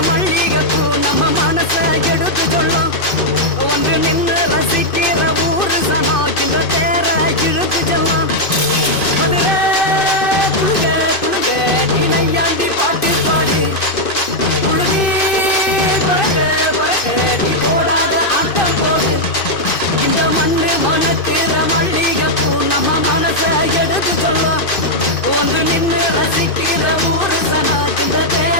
மல்லிகைப்பூ நம்ம மனச எடுத்து சொல்லும். வந்து நின்று ரசிக்கிற ஊரு சனம் இந்த தேர இழுத்து செல்லும். மதுரை குழுங்க குழுங்க நீ நையாண்டி பாட்டு பாடு. குழுதி பறக்க பறக்க நீ போடாத ஆட்டம் போடு. இந்த மண்ணு மணக்கிற மல்லிகைப்பூ நம்ம மனச எடுத்து சொல்லும். வந்து நின்று ரசிக்கிற ஊரு சனா இந்த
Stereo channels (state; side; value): late; right; 2.5 ms